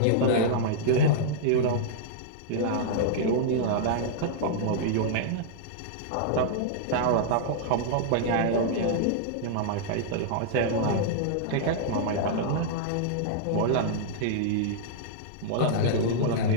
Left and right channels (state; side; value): different; both; correlation -0.02